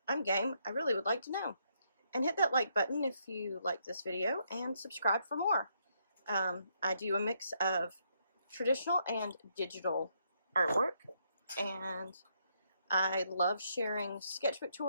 I'm game. I really would like to know. And hit that like button if you like this video, and subscribe for more. I do a mix of traditional and digital artwork, and I love sharing sketchbook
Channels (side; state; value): both; inverted; correlation -0.75